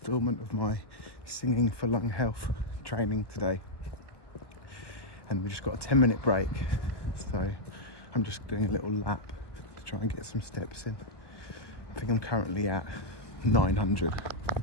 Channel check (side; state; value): right; late; 1.4 ms